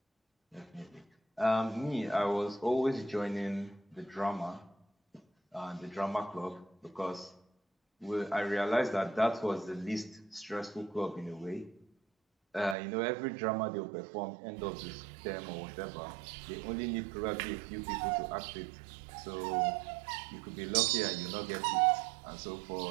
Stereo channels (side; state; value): left; drops out; at 12.8 s